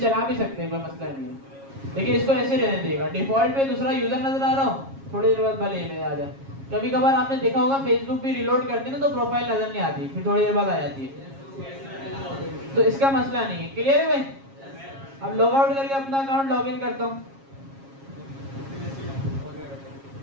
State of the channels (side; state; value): left; late; 7.4 ms